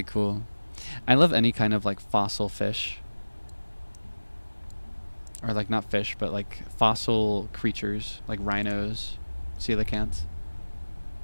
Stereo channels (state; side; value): inverted; both; correlation -1.00